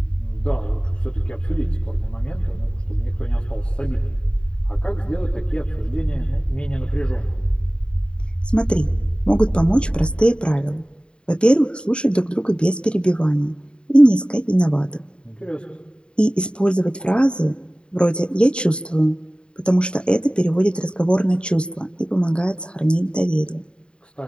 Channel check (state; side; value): late; right; 0.052 ms